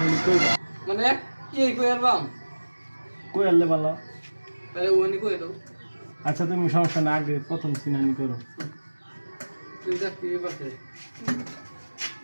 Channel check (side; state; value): both; inverted; correlation -1.00